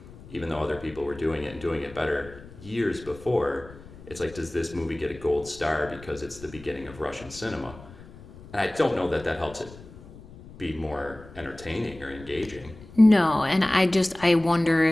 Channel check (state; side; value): noise; left; rumble, 19 dB below the sound